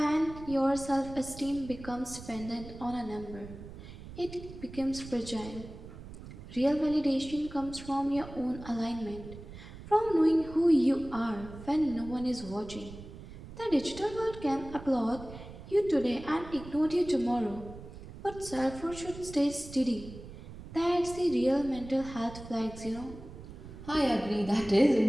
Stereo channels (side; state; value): right; noise; rumble, 14 dB below the sound